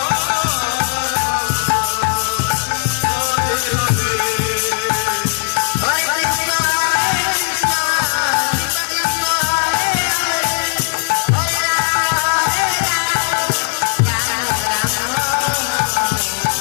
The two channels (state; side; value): silent; right; 58 dB below the other